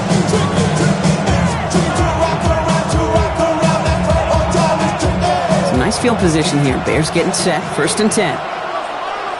Some nice field position here. Bears getting set. 1st and 10.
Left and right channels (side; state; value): both; identical; correlation 1.00